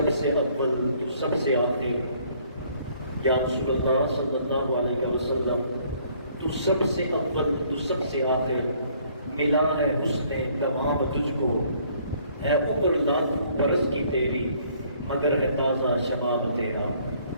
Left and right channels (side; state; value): both; inverted; correlation -0.62